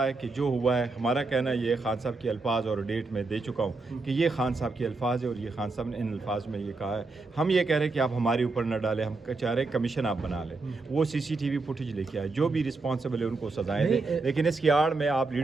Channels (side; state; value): left; quieter; 3.7 dB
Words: ہے کہ جو ہوا ہے ہمارا کہنا یہ خان صاحب کے الفاظ اور ڈیٹ میں دے چکا ہوں کہ یہ خان صاحب کے الفاظ ہے اور یہ خان صاحب نے ان الفاظ میں یہ کہا ہے. ہم یہ کہہ رہے ہیں کہ آپ ہمارے اوپر نہ ڈالیں، ہم چاہ رہے ہیں کمیشن آپ بنا لیں، وہ سی سی ٹی وی فوٹیج لے کے آئے، جو بھی رسپانسبل ہے ان کو سزائیں دیں، لیکن اس کی آڑ میں آپ